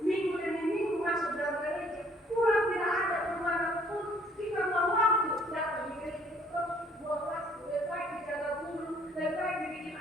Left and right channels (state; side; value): normal; both; correlation 0.61